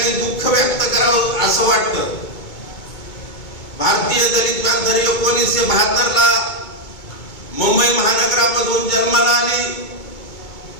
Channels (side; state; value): right; late; 2.2 ms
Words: दुःख व्यक्त करावं असं वाटतं। भारतीय दलित पॅंथर 1972 ला मुंबई महानगरामधून जन्माला आली।